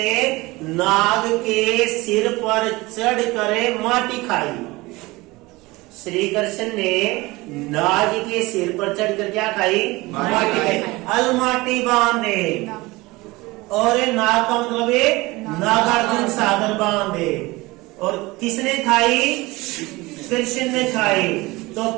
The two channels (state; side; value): quieter; left; 21.6 dB